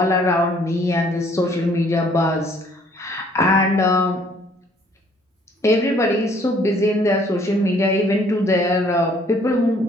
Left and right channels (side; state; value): both; normal; correlation 0.61